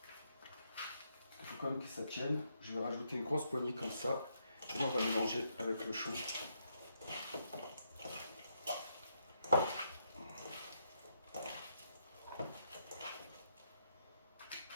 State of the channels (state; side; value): inverted; both; correlation -0.77